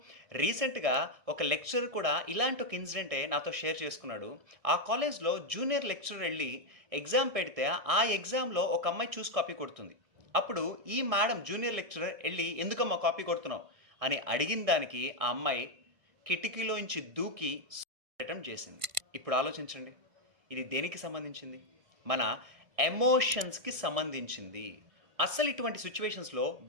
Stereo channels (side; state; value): left; late; 1.7 ms